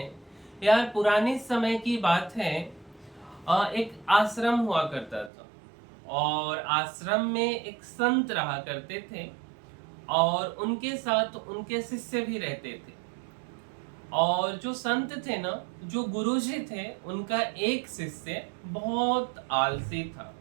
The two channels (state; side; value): drops out; left; at 5.3 s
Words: यार पुराने समय की बात है। एक आश्रम हुआ करता था और आश्रम में एक संत रहा करते थे और उनके साथ उनके शिष्य भी रहते थे। और जो संत थे ना, जो गुरुजी थे, उनका एक शिष्य बहुत आलसी था